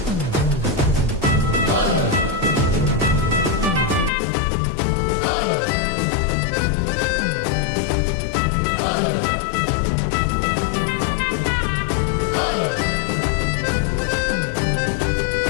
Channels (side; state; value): right; drops out; at 4.1 s